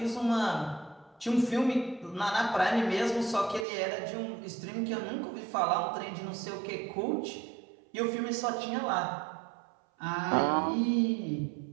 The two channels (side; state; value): left; drops out; at 3.7 s